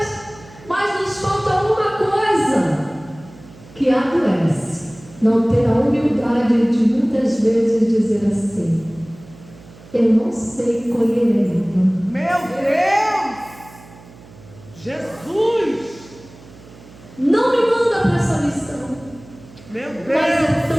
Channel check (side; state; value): right; noise; hum, 22 dB below the sound